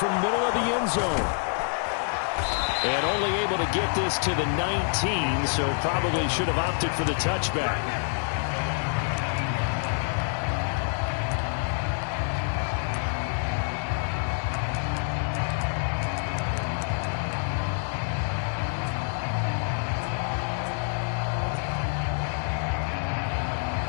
the middle of the end zone. And only able to get this to the 19, so probably should have opted for the touchback.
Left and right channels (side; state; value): right; silent; 57 dB below the other